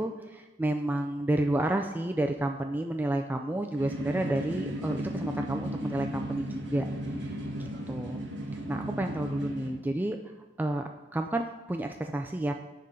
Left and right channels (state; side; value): normal; both; correlation 0.85